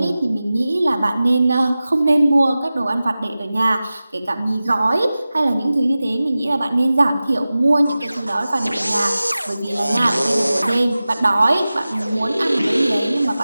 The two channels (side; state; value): both; inverted; correlation -0.96